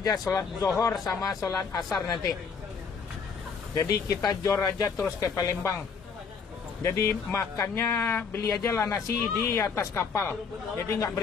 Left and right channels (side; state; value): right; quieter; 5.7 dB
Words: sholat zuhur sama sholat asar nanti. Jadi kita jor aja terus ke Palembang. Jadi makannya beli aja lah nasi di atas kapal. Jadi nggak